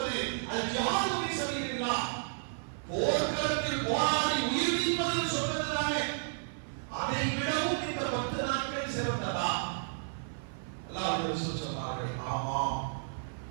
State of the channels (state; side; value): silent; left; 56 dB below the other